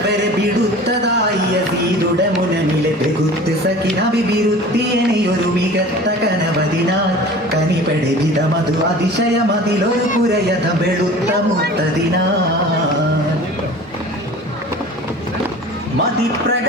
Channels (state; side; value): normal; both; correlation 0.41